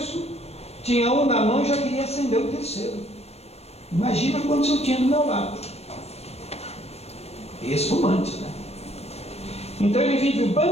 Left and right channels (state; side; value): late; right; 0.31 ms